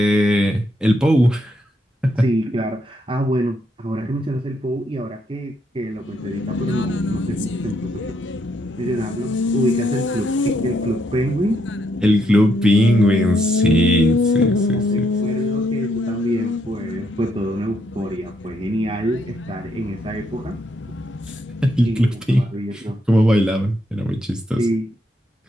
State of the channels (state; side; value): normal; both; correlation 0.75